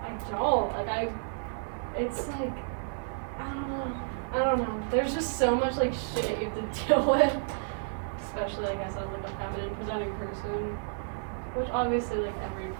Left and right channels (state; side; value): silent; left; 57 dB below the other